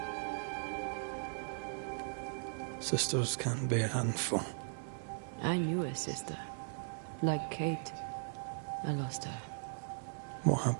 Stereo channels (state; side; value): silent; left; 52 dB below the other